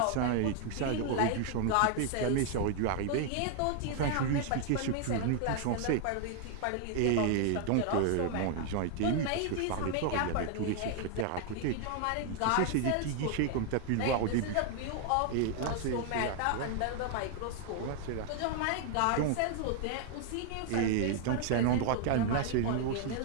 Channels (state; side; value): different; both; correlation 0.00